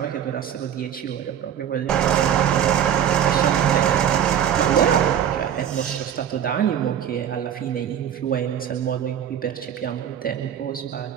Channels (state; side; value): quieter; left; 9.6 dB